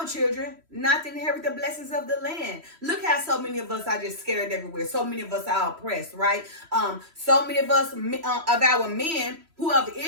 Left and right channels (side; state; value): left; late; 3.1 ms